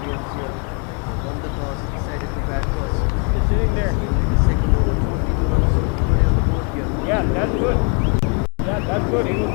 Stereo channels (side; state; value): right; quieter; 36.3 dB